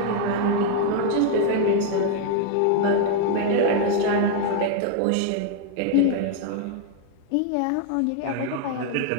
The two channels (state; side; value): different; both; correlation 0.00